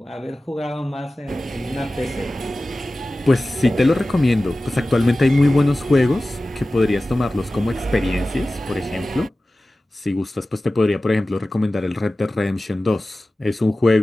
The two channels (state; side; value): normal; both; correlation 0.96